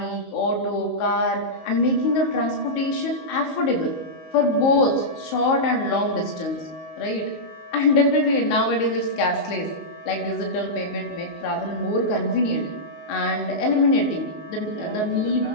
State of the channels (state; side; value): late; right; 19 ms